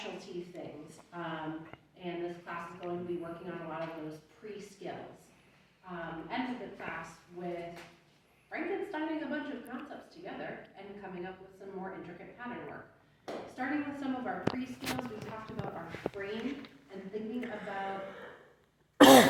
things. And this class is going to be working on a lot of those pre-skills. End the class with Frankensteining a bunch of concepts together and coming up with some more intricate pattern work. Starting with some of our pre-skills, we talked about our frame and thinking about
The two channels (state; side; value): identical; both; correlation 1.00